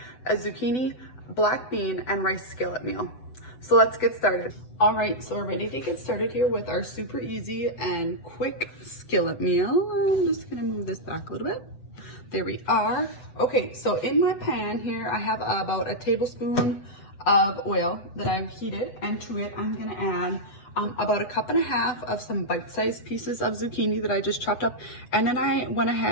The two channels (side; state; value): right; late; 8.0 ms